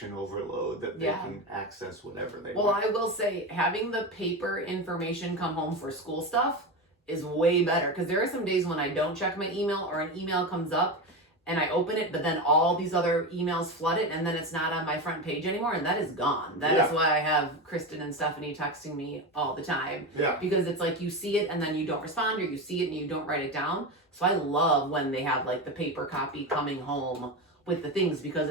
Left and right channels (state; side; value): normal; both; correlation 0.19